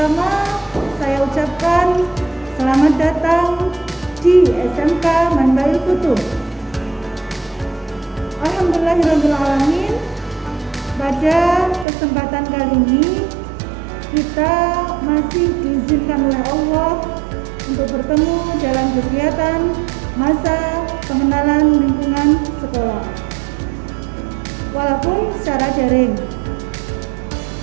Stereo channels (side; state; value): left; drops out; at 11.9 s